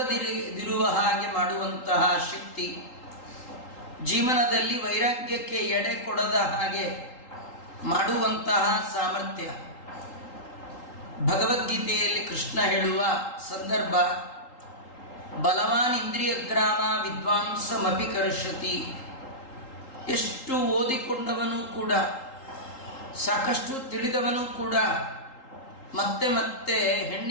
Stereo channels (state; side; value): late; right; 3.8 ms